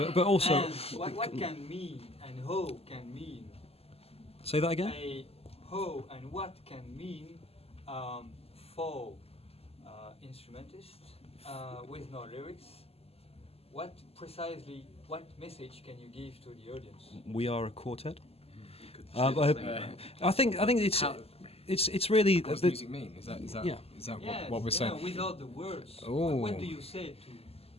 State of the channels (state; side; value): late; right; 0.29 ms